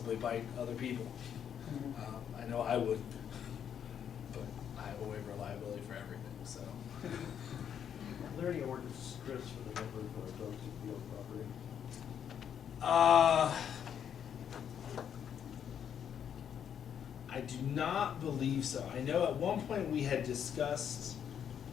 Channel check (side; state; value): right; quieter; 8.6 dB